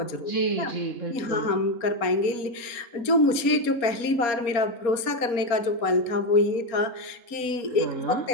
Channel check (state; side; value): late; right; 4.2 ms